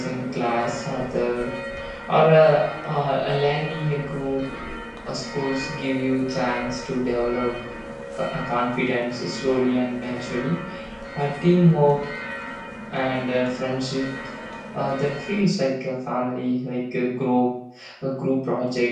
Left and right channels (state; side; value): identical; both; correlation 1.00